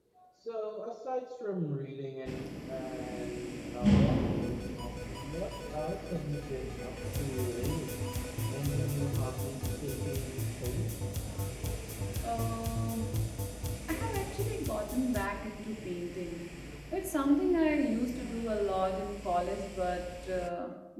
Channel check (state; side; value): identical; both; correlation 1.00